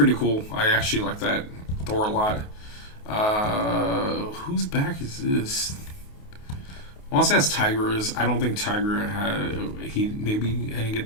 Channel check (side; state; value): right; late; 28 ms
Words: cool. I actually like that Thor a lot. Whose back is this? I want to say that's Tigra's. I don't think Tigra had. Maybe I didn't